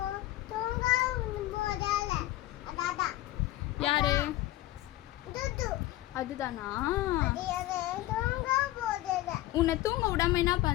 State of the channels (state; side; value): quieter; right; 16.4 dB